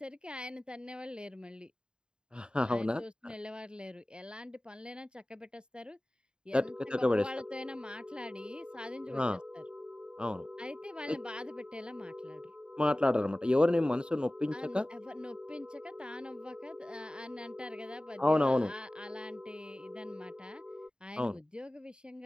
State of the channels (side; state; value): left; late; 0.049 ms